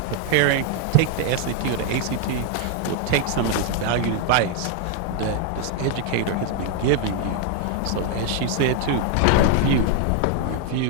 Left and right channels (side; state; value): both; different; correlation 0.00